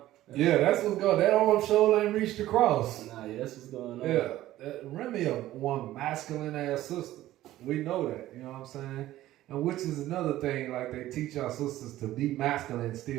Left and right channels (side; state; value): left; quieter; 14.8 dB